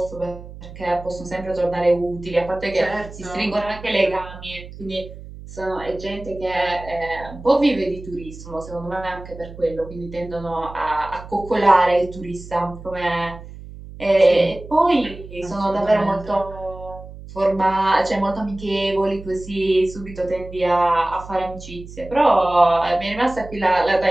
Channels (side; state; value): right; noise; hum, 15 dB below the sound